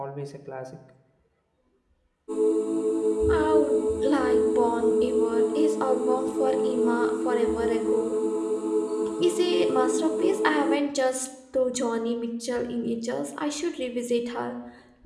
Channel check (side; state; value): both; identical; correlation 1.00